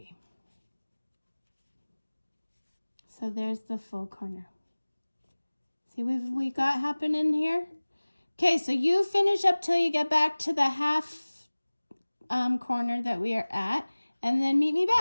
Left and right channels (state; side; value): inverted; both; correlation -1.00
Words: So there's the full corner. See what we got happening here? Okay, so you finish up till you get back to the half corner that we are at, and then meet me